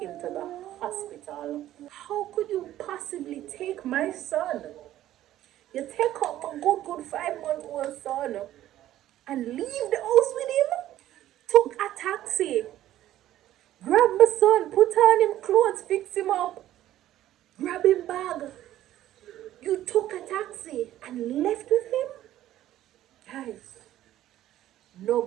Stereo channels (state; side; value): quieter; left; 13.3 dB